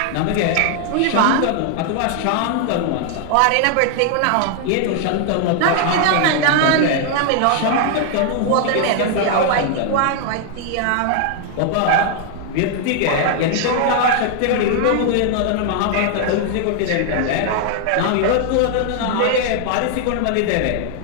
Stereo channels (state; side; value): different; both; correlation 0.00